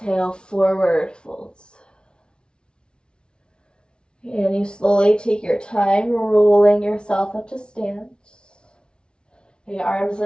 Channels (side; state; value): right; late; 0.055 ms